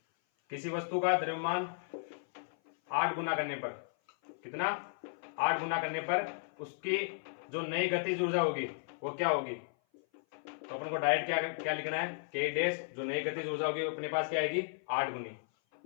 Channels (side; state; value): right; silent; 54 dB below the other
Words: किसी वस्तु का द्रव्यमान 8 गुना करने पर, कितना, 8 गुना करने पर उसकी जो नई गतिज ऊर्जा होगी वो क्या होगी। तो अपन को डायरेक्ट क्या लिखना है, के डैश, जो नई गतिज ऊर्जा होगी अपने पास क्या आएगी, 8 गुनी,